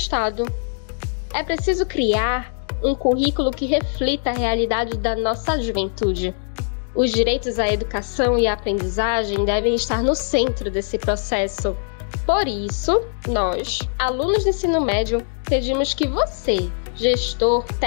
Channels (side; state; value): right; silent; digital silence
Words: É preciso criar um currículo que reflita a realidade da nossa juventude. Os direitos à educação e à aprendizagem devem estar no centro desse processo. Por isso, nós, alunos do ensino médio, pedimos que você, gestor,